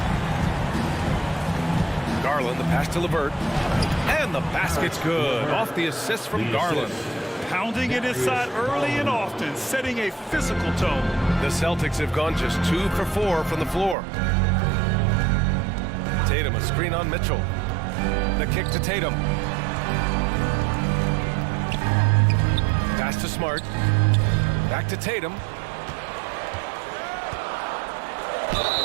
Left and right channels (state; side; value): drops out; left; at 14.0 s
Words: Garland, the pass to LeVert. And the basket's good. Off the assist from Garland. Pounding it inside early and often, setting a physical tone. The Celtics have gone just 2 for 4 from the floor. Tatum, a screen on Mitchell. The kick to Tatum. Pass to Smart. Back to Tatum.